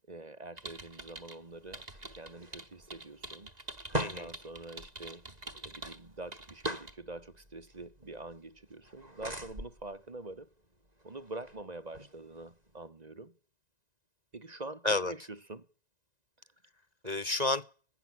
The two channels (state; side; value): late; left; 1.9 ms